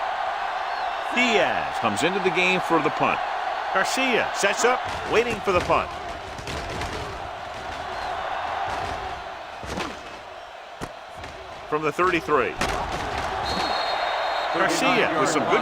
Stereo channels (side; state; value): both; identical; correlation 1.00